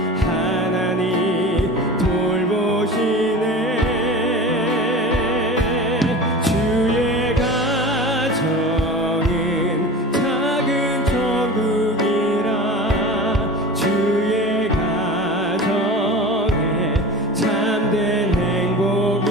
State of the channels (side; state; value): both; normal; correlation 0.34